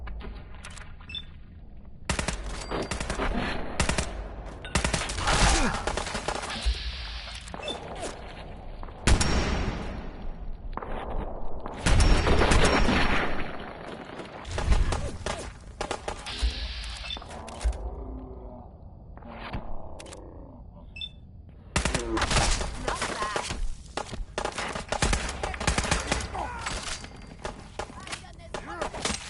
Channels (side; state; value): both; identical; correlation 1.00